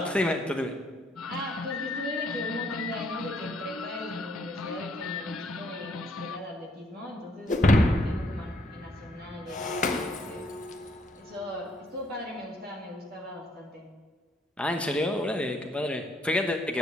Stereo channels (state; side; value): normal; both; correlation 0.69